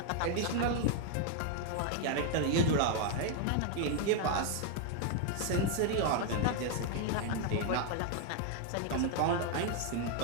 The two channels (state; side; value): different; both; correlation 0.00